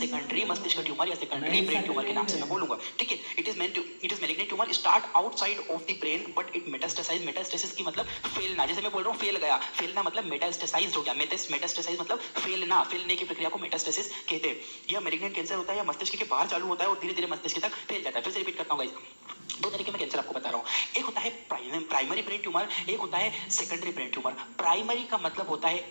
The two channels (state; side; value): inverted; both; correlation -1.00